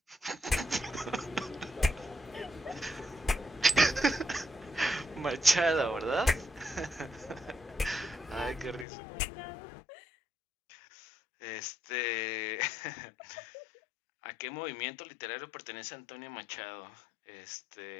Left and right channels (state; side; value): drops out; right; at 8.8 s